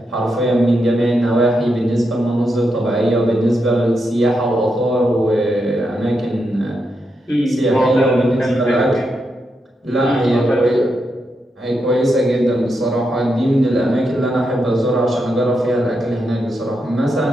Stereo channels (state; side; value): normal; both; correlation 0.84